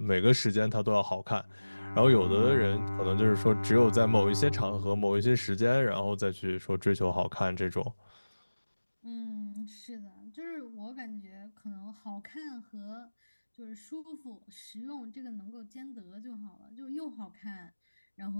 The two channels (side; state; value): both; inverted; correlation -1.00